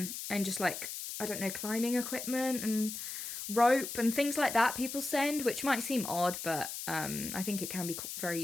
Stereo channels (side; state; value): left; noise; hiss, 7 dB below the sound